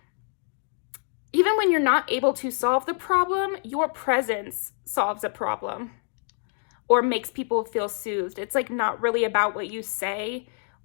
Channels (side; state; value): right; silent; 58 dB below the other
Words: even when you're not able to solve the problem, your presence solves a problem or makes people feel soothed. It's like not really about what you say